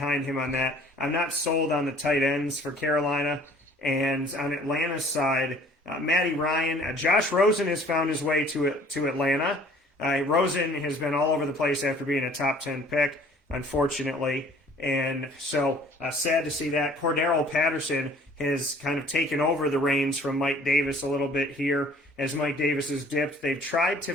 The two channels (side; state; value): both; normal; correlation 0.54